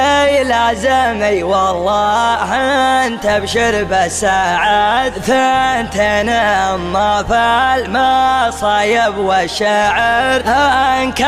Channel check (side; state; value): both; identical; correlation 1.00